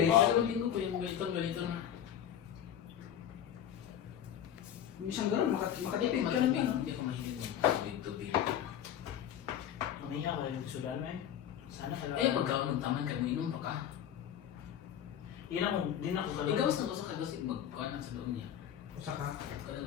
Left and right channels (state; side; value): quieter; right; 9.8 dB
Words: 2 linggo ko yung ganito na. Minsan gano'n, makatipid ka rin yan. Hindi ko mahilig ng tubig. Umiyak ko yung sudan mo eh. Sana ka Kaya pagkaon ng taman ka mo inom pa ka. Yun ako, din ako sa Ikaw sa gusto ka kasi magkuhan sa doon niya. Usa ka. Kada